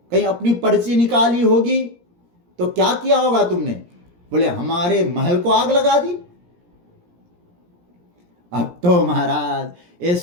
कहीं अपनी पर्ची निकाली होगी, तो क्या किया होगा तुमने। बोले हमारे महल को आग लगा दी। अब तो महाराज ये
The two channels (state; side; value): late; left; 17 ms